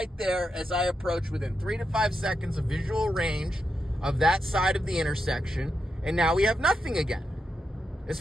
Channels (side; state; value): both; normal; correlation 0.85